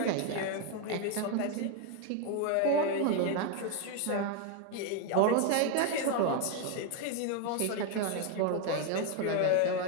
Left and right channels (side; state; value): both; different; correlation 0.01